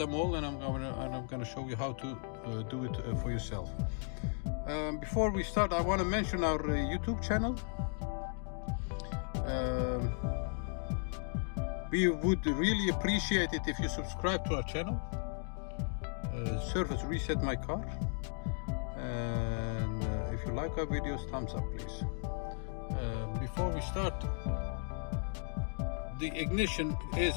all, and I'm gonna show you how to do it for yourself. Before we start, I want to mention our YouTube channel. We would really appreciate it if you subscribe to our channel. Service reset my car, and if you like our videos, thumbs up please. Before we start, the ignition is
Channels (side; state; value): right; silent; 54 dB below the other